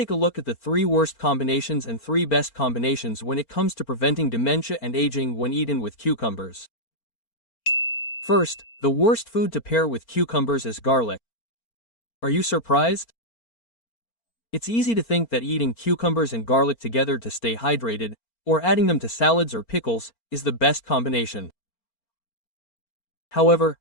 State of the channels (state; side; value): late; right; 4.4 ms